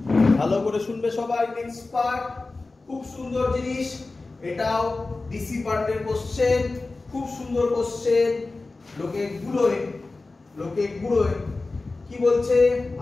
ভালো করে শুনবে সবাই। নেক্সট পার্ট খুব সুন্দর জিনিস, এটাও ডিসি পার্টের কোশ্চেন, খুব সুন্দর কোশ্চেন। লোকে গুলোয় কি বলছে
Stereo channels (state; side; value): quieter; right; 3.4 dB